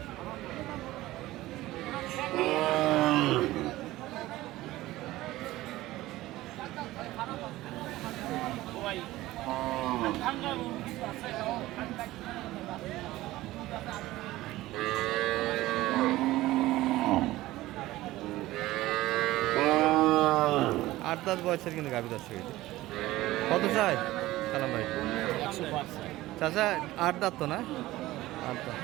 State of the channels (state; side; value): quieter; left; 17.1 dB